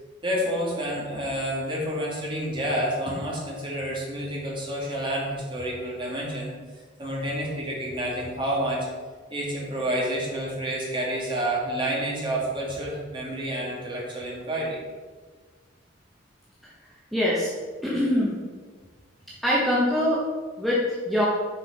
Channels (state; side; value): normal; both; correlation 0.33